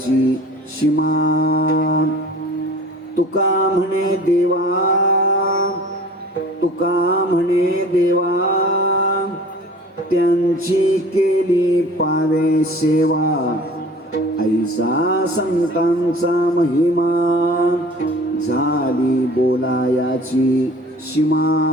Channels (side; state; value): both; normal; correlation 0.45